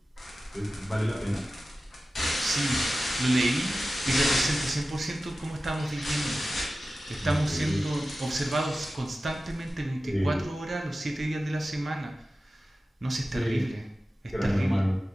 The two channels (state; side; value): normal; both; correlation 0.95